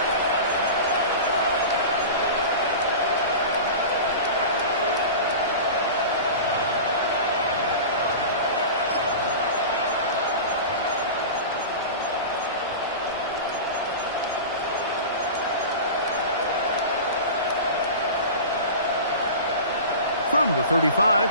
From the 35,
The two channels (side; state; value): both; inverted; correlation -0.32